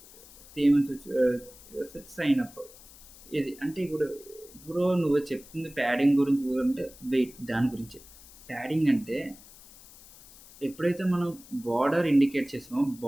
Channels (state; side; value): noise; left; hiss, 21 dB below the sound